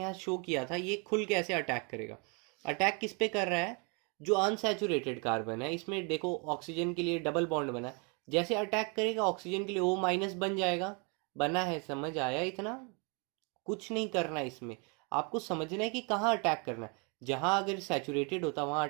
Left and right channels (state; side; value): quieter; left; 33.1 dB